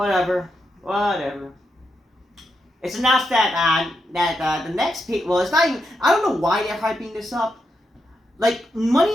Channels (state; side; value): normal; both; correlation 0.84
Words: It's announced that the next it's not even. I don't know why they're hyping this up. Like,